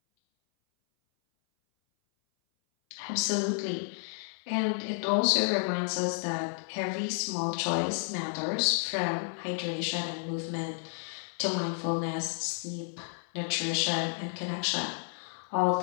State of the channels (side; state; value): right; silent; 57 dB below the other